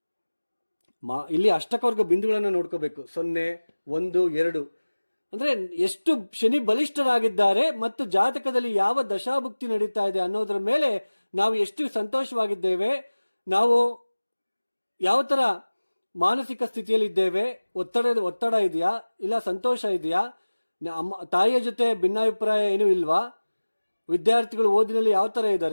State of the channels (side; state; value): both; inverted; correlation -1.00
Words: ಇಲ್ಲಿ ಅಷ್ಟಕವರ್ಗ ಬಿಂದುಗಳನ್ನು ನೋಡ್ಕೋಬೇಕು. 0, 1, 2 ಅಂದ್ರೆ ಎಷ್ಟು ಶನಿ ಬಲಿಷ್ಠರಾಗಿದ್ದಾರೆ ಮತ್ತು ಜಾತಕದಲ್ಲಿ ಯಾವ ದಶಾಭುಕ್ತಿ ನಡೀತಾ ಇದೆ ಅನ್ನೋದ್ರ ಮೇಲೆ ನಾವು ಎಷ್ಟು ಸಂತೋಷವಾಗಿದ್ದೇವೆ, ನಾವು ಯಾವ ತರ ಮಾನಸಿಕ ಸ್ಥಿತಿಯಲ್ಲಿ ಇದ್ದೇವೆ, ಒತ್ತಡ ಇದೆಯಾ, ಇಲ್ಲ ಸಂತೋಷ ಇದೆಯಾ, ತಾಯಿಯ ಜೊತೆ ಭಿನ್ನಾಭಿಪ್ರಾಯ ಏನೂ ಇಲ್ವಾ, ವಿದ್ಯಾರ್ಥಿಗಳು ಓದಿನಲ್ಲಿ ಯಾವ ತರ